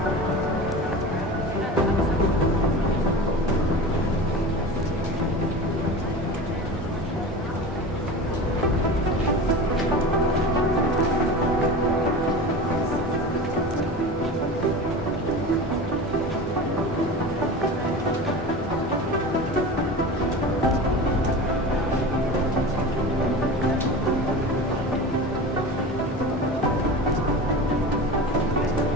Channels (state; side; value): normal; both; correlation 0.31